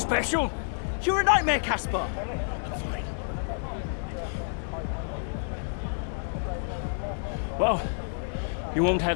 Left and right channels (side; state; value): right; silent; digital silence